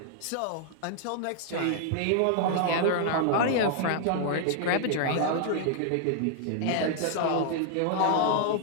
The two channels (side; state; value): both; different; correlation 0.00